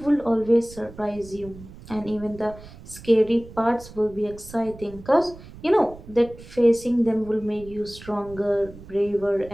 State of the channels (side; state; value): right; noise; rumble, 18 dB below the sound